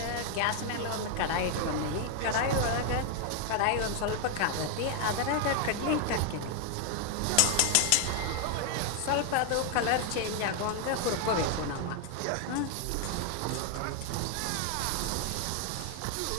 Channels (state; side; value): different; both; correlation 0.00